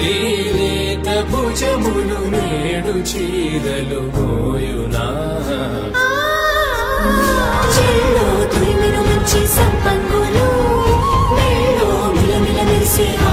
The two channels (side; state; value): both; identical; correlation 1.00